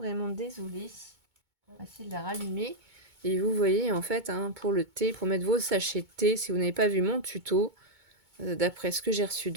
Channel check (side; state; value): left; late; 2.2 ms